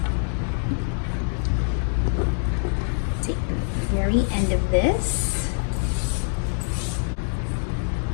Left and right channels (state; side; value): silent; right; digital silence